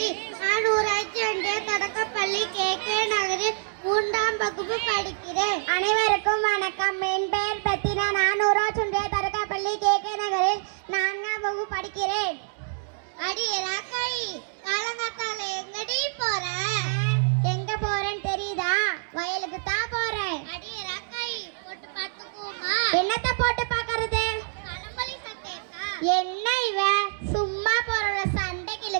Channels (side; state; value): left; silent; digital silence